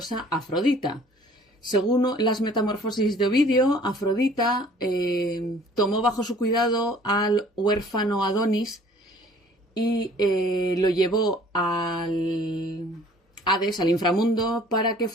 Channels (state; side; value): normal; both; correlation 0.53